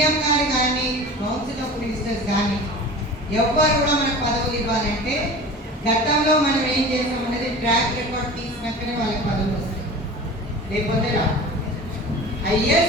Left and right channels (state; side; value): normal; both; correlation 0.37